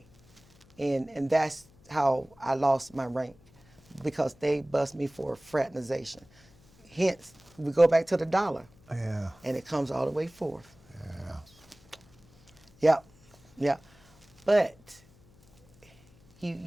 and that's how I lost my rank, because they bust me for fraternization. Hence, we go back to the dollar. Yeah. And it comes all the way forth. Yeah. Yeah. But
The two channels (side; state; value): left; noise; hum, 28 dB below the sound